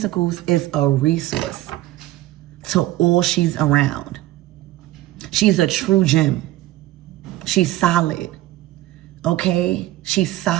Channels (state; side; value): quieter; left; 15.7 dB